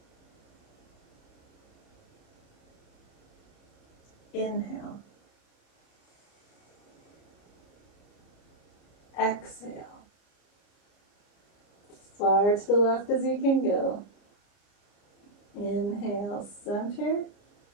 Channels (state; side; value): late; right; 29 ms